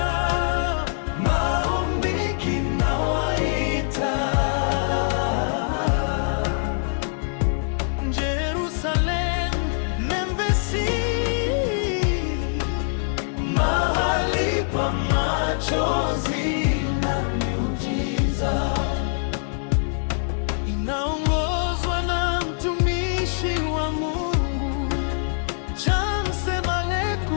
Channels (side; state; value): right; silent; digital silence